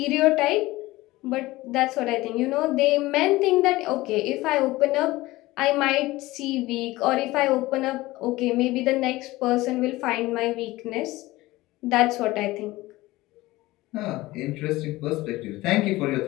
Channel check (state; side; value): quieter; right; 18.9 dB